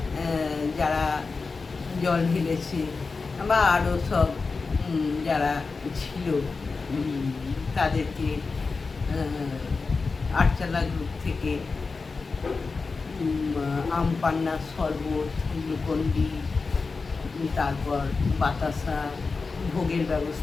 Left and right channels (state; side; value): quieter; right; 4.3 dB